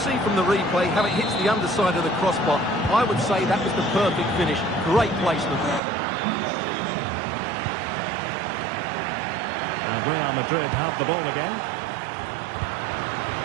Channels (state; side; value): drops out; left; at 5.8 s